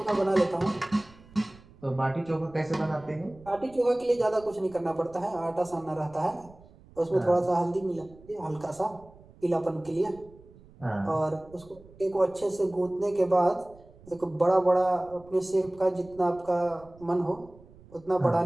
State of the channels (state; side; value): noise; right; rumble, 24 dB below the sound